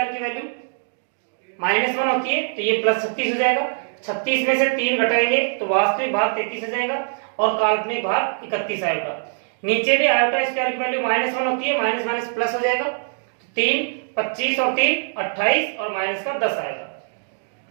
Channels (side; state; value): left; silent; digital silence